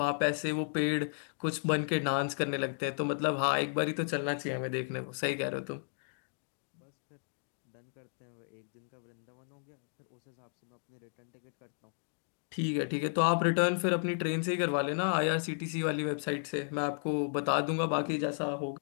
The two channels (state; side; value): silent; right; digital silence